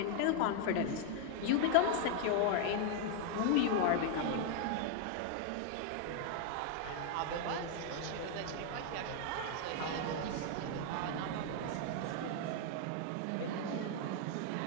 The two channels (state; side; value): different; both; correlation 0.00